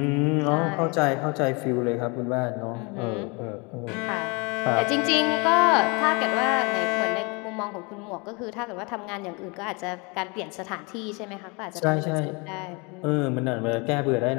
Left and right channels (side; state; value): right; quieter; 29.6 dB